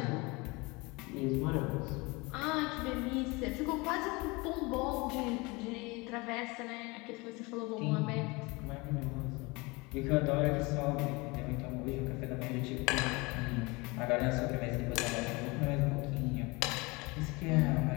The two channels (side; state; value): right; quieter; 25.5 dB